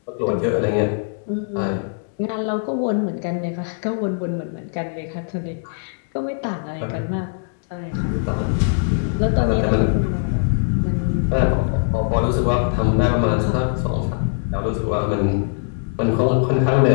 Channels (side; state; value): right; silent; digital silence